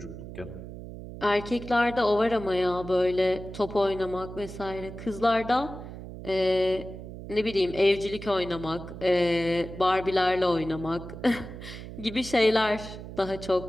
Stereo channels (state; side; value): noise; right; hum, 12 dB below the sound